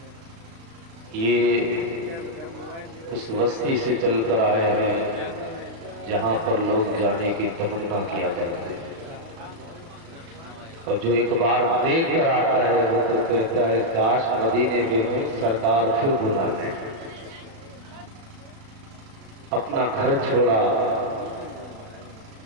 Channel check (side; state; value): left; late; 36 ms